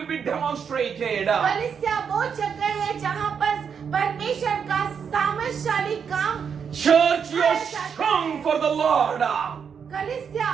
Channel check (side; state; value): left; quieter; 6.9 dB